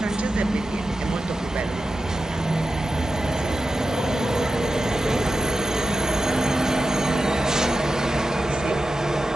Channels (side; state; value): both; normal; correlation 0.92